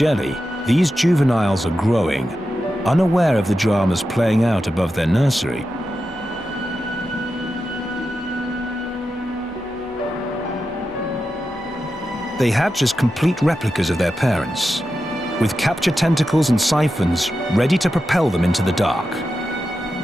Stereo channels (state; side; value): noise; right; hum, 28 dB below the sound